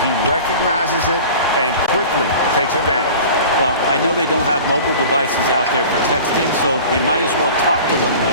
He recognizes it and quickly takes advantage. Well, I know they don't have mobile devices out there for texting, so they might as well talk to one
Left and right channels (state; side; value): inverted; both; correlation -0.40